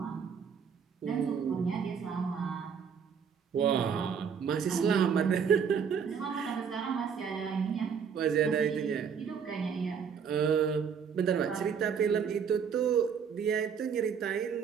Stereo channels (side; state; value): left; quieter; 6.9 dB